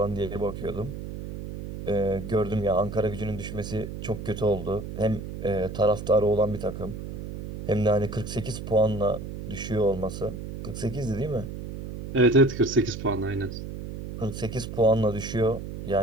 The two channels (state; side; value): noise; right; hum, 8 dB below the sound